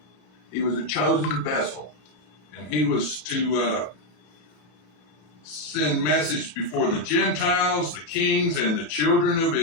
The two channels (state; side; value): late; right; 33 ms